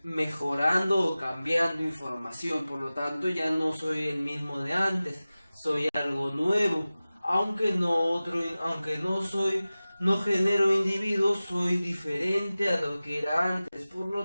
mejorando o cambiando información, por lo tanto ya no soy el mismo de antes, soy algo nuevo, no genero individuos, soy diferente a lo que era antes, por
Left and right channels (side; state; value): both; inverted; correlation -0.97